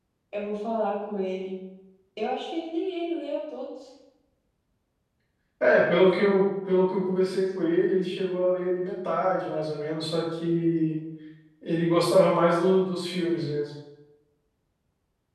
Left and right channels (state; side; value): identical; both; correlation 1.00